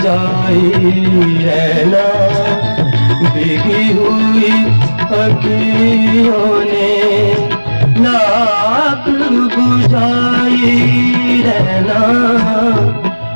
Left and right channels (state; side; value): inverted; both; correlation -1.00